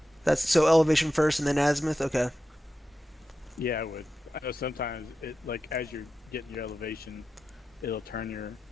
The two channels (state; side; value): normal; both; correlation 0.91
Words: That's so elevation first and then azimuth. Okay. Yeah, I would. I know sometimes it like as you're getting your elevation, it'll turn